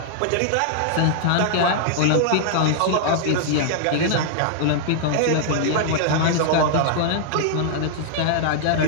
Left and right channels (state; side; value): different; both; correlation -0.01